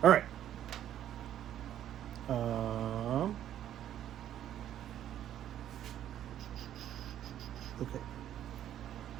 All right. Okay.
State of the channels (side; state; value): left; quieter; 11.1 dB